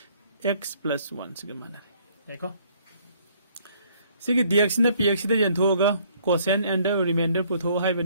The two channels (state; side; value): inverted; both; correlation -0.62